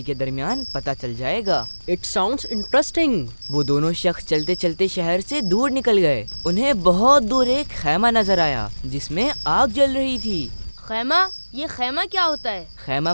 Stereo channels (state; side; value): inverted; both; correlation -1.00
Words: के दरमियान पता चल जाएगा। It sounds interesting. वो दोनों शख्स चलते चलते शहर से दूर निकल गए। उन्हें बहुत दूर एक खैमा नजर आया जिसमें आग जल रही थी। खैमा? ये खैमा क्या होता है? खैमा